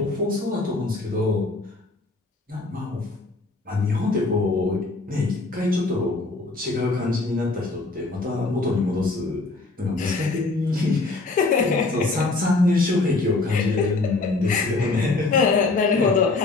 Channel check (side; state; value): right; quieter; 3.4 dB